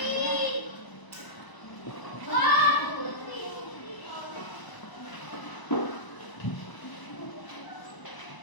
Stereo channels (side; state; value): right; late; 1.0 ms